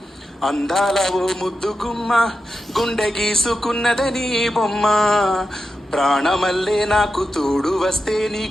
అందాల ఓ ముద్దు గుమ్మ, గుండె గీసుకున్నదని బొమ్మ, ప్రాణమల్లే నాకు తోడు వస్తే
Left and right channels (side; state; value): both; normal; correlation 0.89